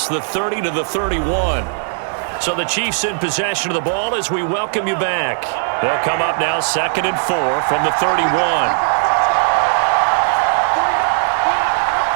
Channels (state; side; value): silent; left; digital silence